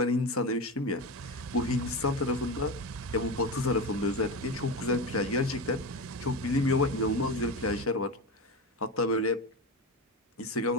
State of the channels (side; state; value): both; normal; correlation 0.21